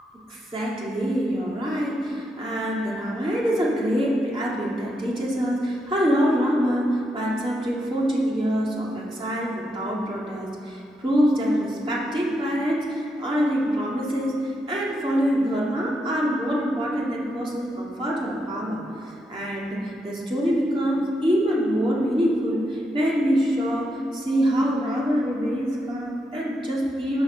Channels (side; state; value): both; normal; correlation 0.82